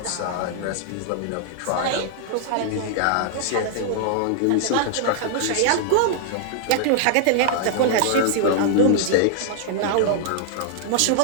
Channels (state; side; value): different; both; correlation -0.01